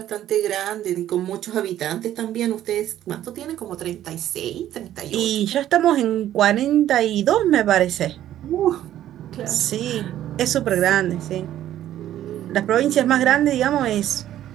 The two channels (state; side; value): quieter; left; 12.3 dB